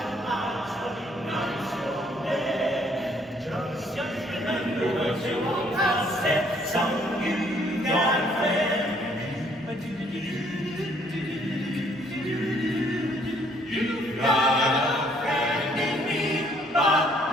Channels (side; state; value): both; normal; correlation 0.64